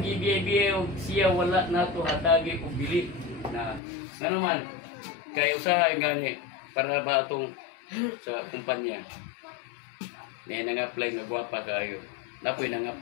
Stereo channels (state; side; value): drops out; right; at 3.8 s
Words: gibiye-biye o siya wala nato hatagi o bili na naman kay usahay gani para ba atong sa kumpanya niya nang-apply nga gwapa kayo napoy